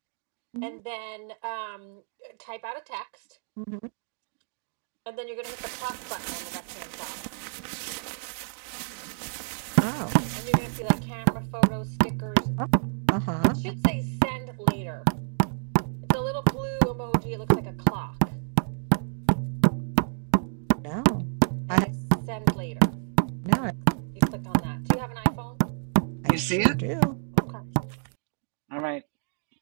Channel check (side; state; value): left; silent; 59 dB below the other